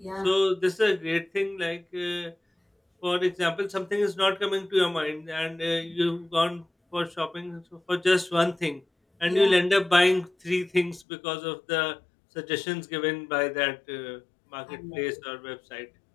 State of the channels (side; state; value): right; drops out; at 11.1 s